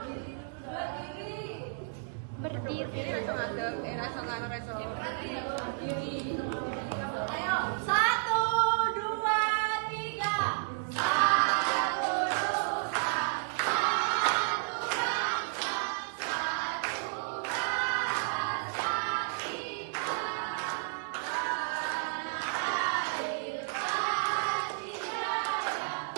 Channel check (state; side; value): silent; left; digital silence